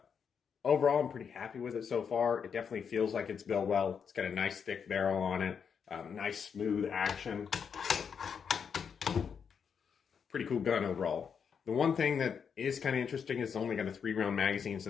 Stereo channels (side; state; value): right; quieter; 6.8 dB